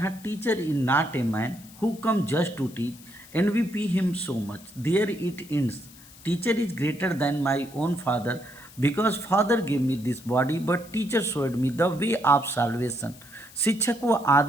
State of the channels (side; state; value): left; noise; hiss, 21 dB below the sound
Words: teacher is not a man who come just to teach and we pay him so much, there it ends. Teacher is greater than my own father because father give me this body but teacher showed me the way of salvation. शिक्षक वो